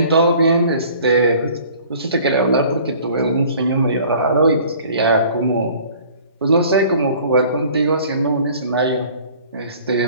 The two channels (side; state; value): both; inverted; correlation -0.50